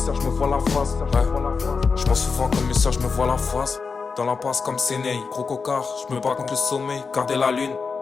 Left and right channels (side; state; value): right; quieter; 5.0 dB